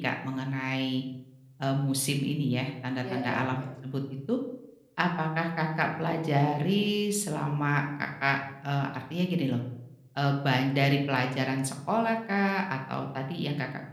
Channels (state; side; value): identical; both; correlation 1.00